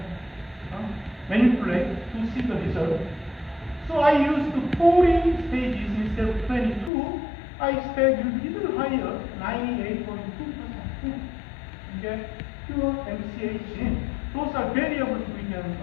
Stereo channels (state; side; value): drops out; right; at 6.9 s